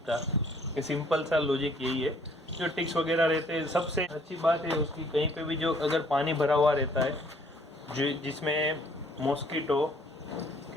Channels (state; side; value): normal; both; correlation 0.61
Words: ये सिंपल सा लॉजिक यही है। जो टिक्स वगैरह रहते हैं, सबसे अच्छी बात है उसकी, कहीं पे भी जो अगर पानी भरा हुआ रहता है जो जिसमें मॉस्किटो